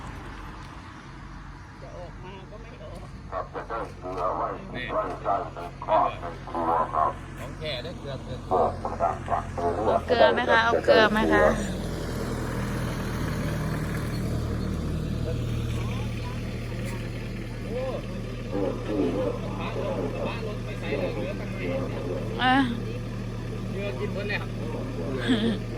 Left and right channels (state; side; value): identical; both; correlation 1.00